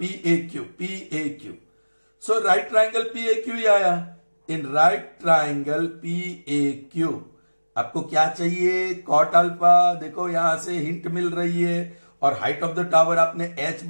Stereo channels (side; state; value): both; inverted; correlation -1.00